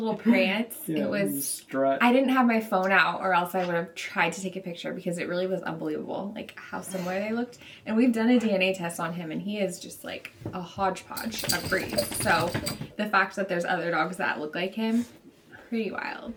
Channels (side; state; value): both; identical; correlation 1.00